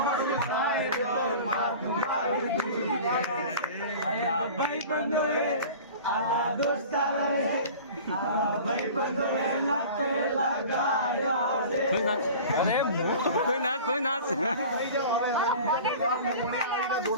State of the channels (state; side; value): inverted; both; correlation -0.39